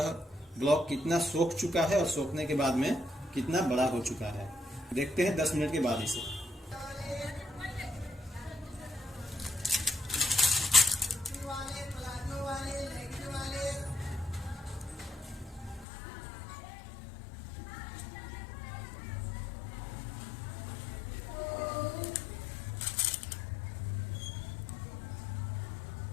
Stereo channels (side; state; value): right; drops out; at 15.9 s